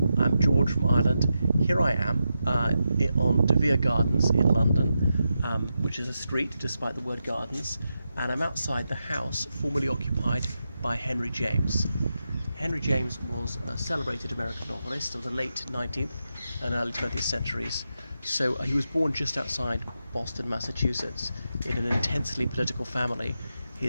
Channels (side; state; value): both; inverted; correlation -0.88